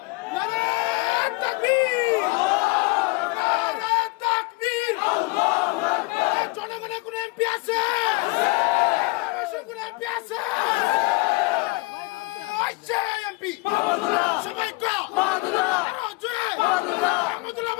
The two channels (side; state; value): right; quieter; 26.2 dB